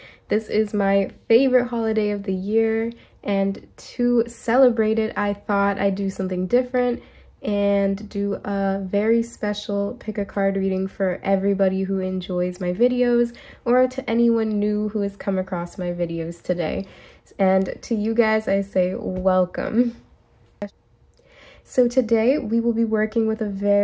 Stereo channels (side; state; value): both; identical; correlation 1.00